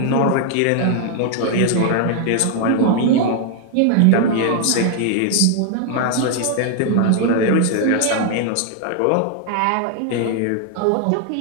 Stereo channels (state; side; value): different; both; correlation 0.00